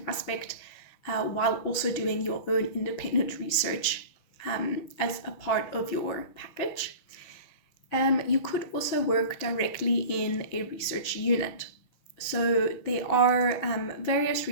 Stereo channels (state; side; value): late; right; 6.2 ms